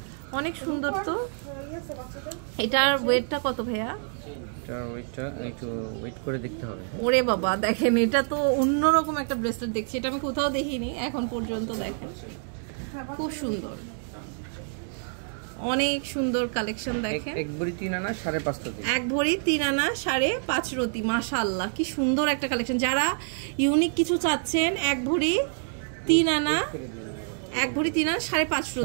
অনেক সুন্দর। তো এটার ওয়েটটা কত ভাইয়া? এটার ওয়েটটা একটু ওয়েট করে দেখতে হবে। ওরে বাবা, দেখেন এটা তো অন্যরকম একটা ব্রেসলেট দেখছি, এটা আমি কোথাও দেখিনি এখন পর্যন্ত। দেখেন খুব সুন্দর, অনেক সুন্দর কালেকশন। দেখেন এক ভরি 3 আনা 5.5 রতি, এক ভরি 3 আনা 5.5 রতি। মাশাআল্লাহ কি সুন্দর একটা কালেকশন। যারা ইউনিক কিছু চাচ্ছেন, এক ভরি 3 আনা 5.5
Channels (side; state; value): left; silent; 60 dB below the other